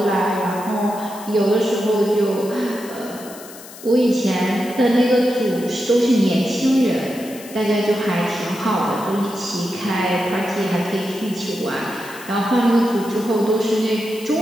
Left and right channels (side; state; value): left; noise; hiss, 17 dB below the sound